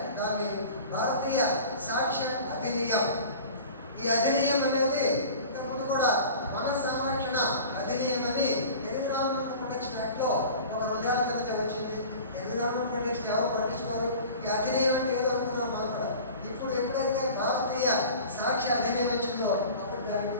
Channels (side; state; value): both; inverted; correlation -0.40